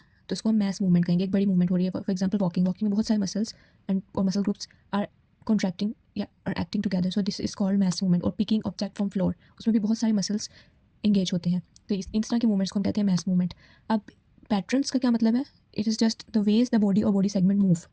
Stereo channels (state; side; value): identical; both; correlation 1.00